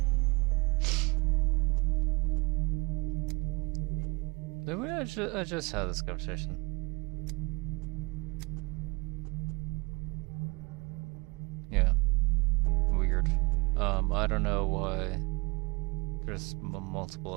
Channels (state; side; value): quieter; left; 26.3 dB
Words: I just had this conversation. Yeah. Weird. I don't know why there's multiple